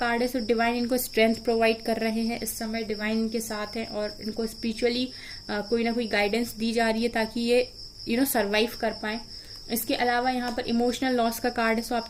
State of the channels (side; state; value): both; identical; correlation 1.00